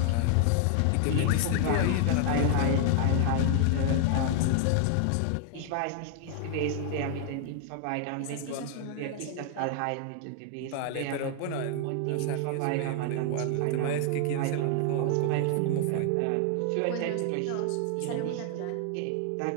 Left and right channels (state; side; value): different; both; correlation 0.00